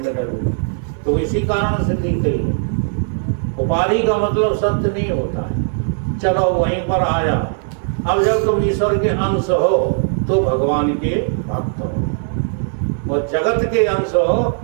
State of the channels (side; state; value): left; silent; digital silence